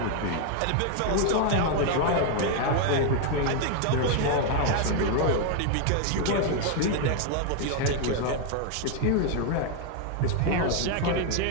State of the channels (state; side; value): different; both; correlation 0.00